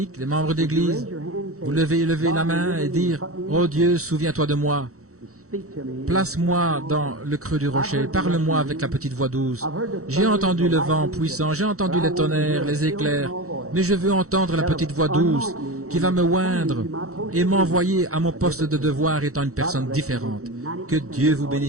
les membres d'église, vous levez la main et dire, « Oh Dieu, souviens-toi de moi. Place-moi dans le creux du rocher. Parle-moi avec la petite voix douce. J'ai entendu le vent puissant, j'ai entendu les tonnerres, les éclairs, mais je veux entendre la petite voix douce qui va me oindre et m'envoyer à mon poste de devoir étant une personne différente. Que Dieu vous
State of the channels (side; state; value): left; late; 0.65 ms